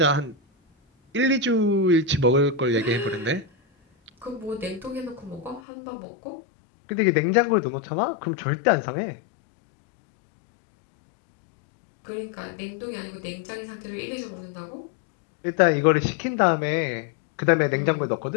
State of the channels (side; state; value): right; drops out; at 5.6 s